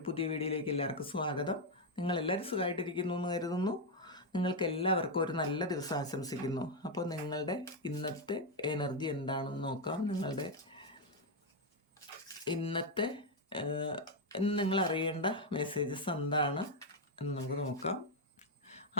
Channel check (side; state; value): both; normal; correlation 0.02